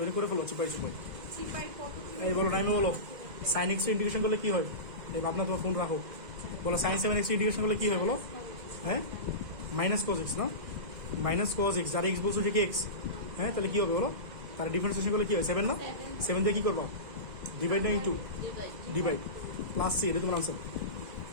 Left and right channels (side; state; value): left; late; 2.0 ms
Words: এনে করে ফেলো চিপাই চিপাই। এই বলো টাইমে বলো সাইন এক্স ইন্টিগ্রেশন করলে কি হয়? এই ভাবনা তোমার ফোন রাখো, বলো সাইন 7x ইন্টিগ্রেশন করলে কি হয় বলো? হ্যাঁ মাইনাস কজ এক্স না, মাইনাস কজ এক্স, যার এক্স বলছো যে কি এক্স, হ্যাঁ তাহলে কি হবে বলো? তার ডিফারেন্সিয়েশন করলে কি হয়? 7 না, 7 দিয়ে কি করবা? ডিভাইড না ইন্টু ডিভাইড প্লাস সি, এটা তোমার আনসার